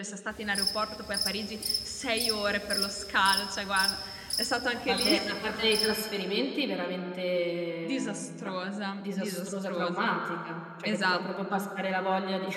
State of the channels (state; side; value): identical; both; correlation 1.00